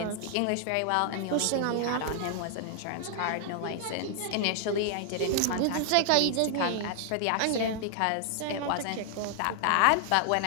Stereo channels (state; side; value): different; both; correlation 0.00